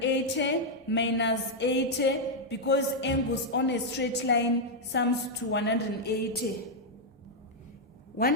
minus 80, because angles on a straight line sums to 180.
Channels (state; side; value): normal; both; correlation -0.03